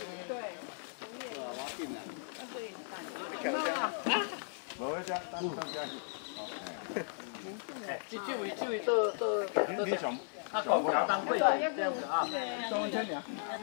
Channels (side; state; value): right; silent; 54 dB below the other